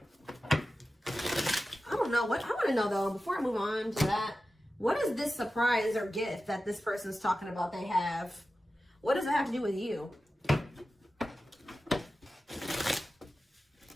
don't know. I want to know though, before I move on to that, what is this surprise or gift that this person's talking about they have? What does it have to do with you?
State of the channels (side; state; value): both; normal; correlation 0.94